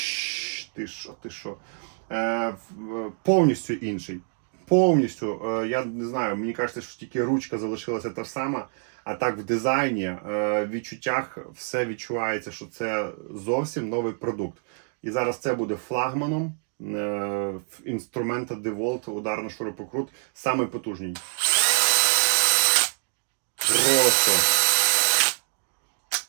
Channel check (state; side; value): silent; left; 61 dB below the other